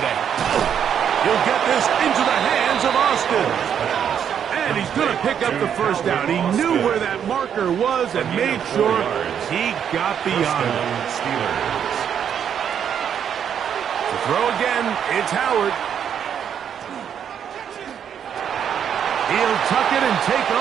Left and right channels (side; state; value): left; quieter; 8.5 dB